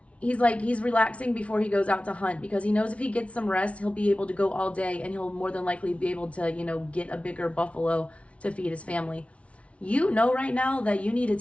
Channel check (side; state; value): right; late; 0.063 ms